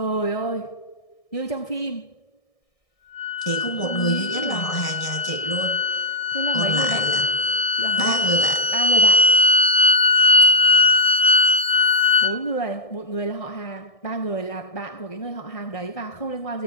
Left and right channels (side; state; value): right; late; 1.6 ms